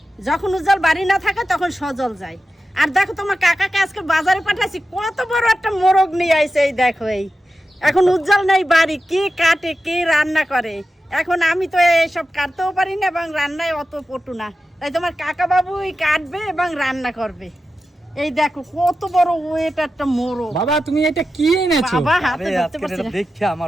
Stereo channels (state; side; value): normal; both; correlation 0.92